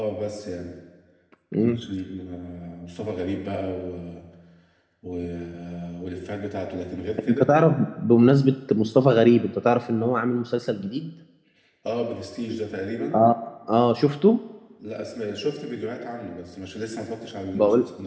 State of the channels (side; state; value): both; identical; correlation 1.00